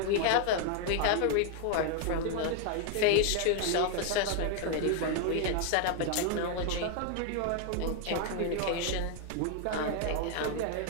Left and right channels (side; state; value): both; different; correlation 0.00